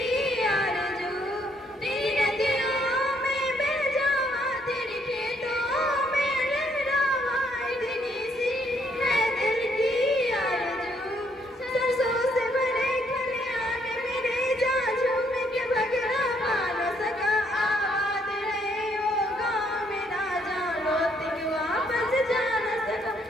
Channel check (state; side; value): normal; both; correlation 0.70